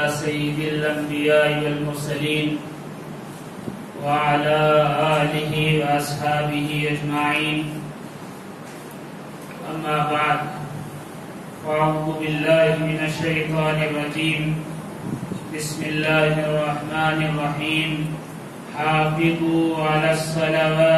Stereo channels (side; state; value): both; identical; correlation 1.00